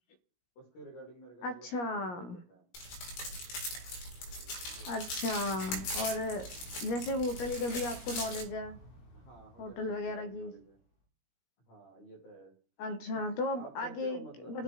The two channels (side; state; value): right; late; 17 ms